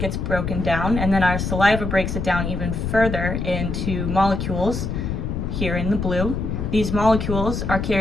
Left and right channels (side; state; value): left; noise; rumble, 3 dB below the sound